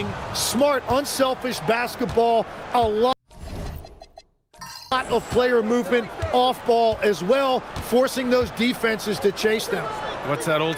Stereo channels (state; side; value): identical; both; correlation 1.00